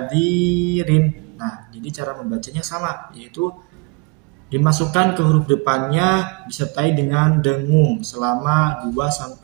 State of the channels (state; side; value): quieter; left; 30.4 dB